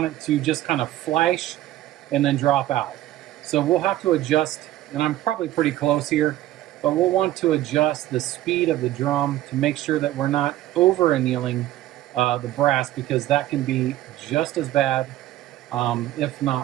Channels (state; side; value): quieter; left; 14.5 dB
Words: it to just kind of flash and then drop out. So we'll have to adjust, and I'm probably pretty close here, but we'll want to adjust the speed of the drum to make sure that we're not over annealing the brass, because that can be just as bad, if